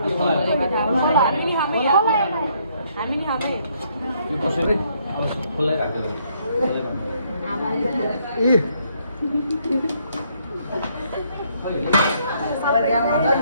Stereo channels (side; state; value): both; inverted; correlation -0.69